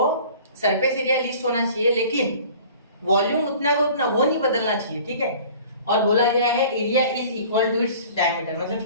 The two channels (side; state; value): both; inverted; correlation -0.47